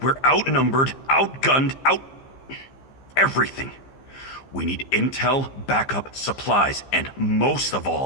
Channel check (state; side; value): late; right; 15 ms